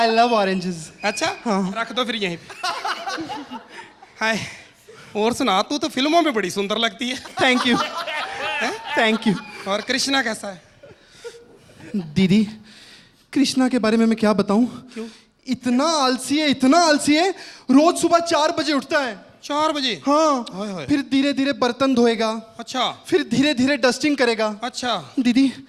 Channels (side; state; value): both; identical; correlation 1.00